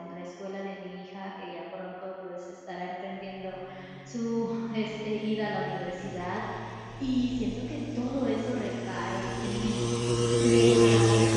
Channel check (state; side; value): identical; both; correlation 1.00